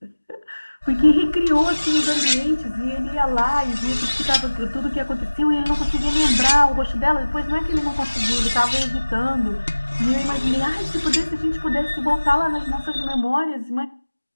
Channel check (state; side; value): inverted; both; correlation -1.00